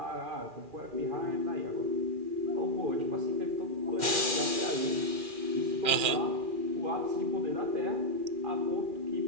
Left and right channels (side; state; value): left; late; 2.4 ms